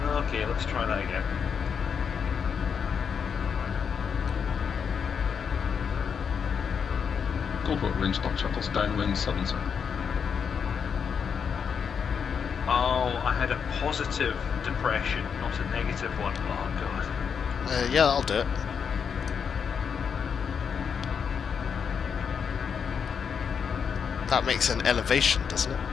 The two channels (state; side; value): quieter; right; 6.8 dB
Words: Okay, let's try that again. Goldwater range, Dot Chuckles downwind, southern circle. Oh, I had a positive depression, not a negative one. Oh god. Yeah, I'll do it. That makes an elevation, doesn't it?